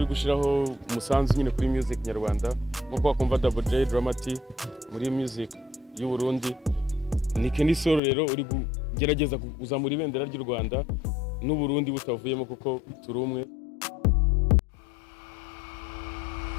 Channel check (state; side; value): drops out; right; at 8.0 s